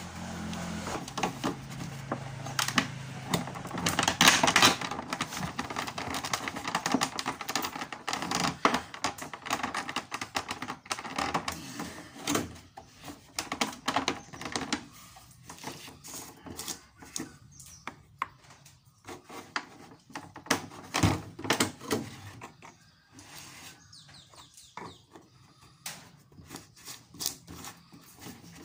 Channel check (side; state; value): both; identical; correlation 1.00